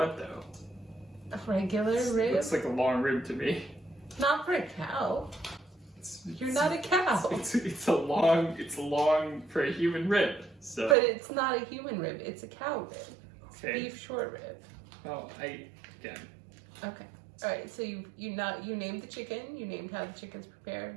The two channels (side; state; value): left; drops out; at 11.0 s